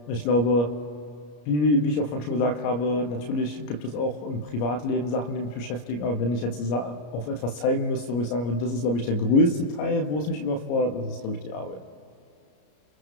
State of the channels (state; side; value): late; right; 34 ms